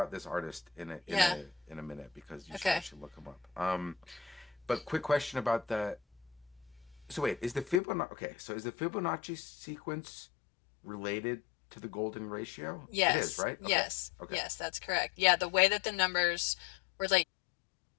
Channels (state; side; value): drops out; right; at 7.8 s